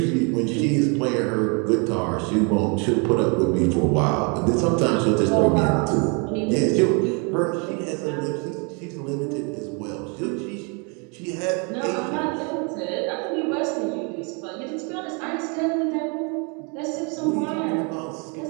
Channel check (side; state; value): left; quieter; 34.3 dB